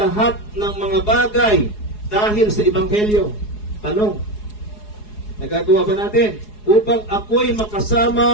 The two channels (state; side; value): late; right; 4.8 ms